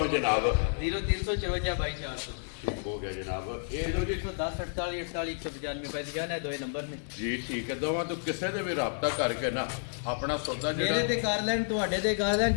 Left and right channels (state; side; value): silent; right; digital silence